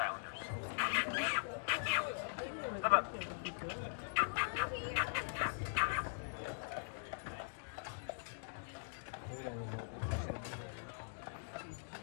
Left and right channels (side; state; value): right; silent; digital silence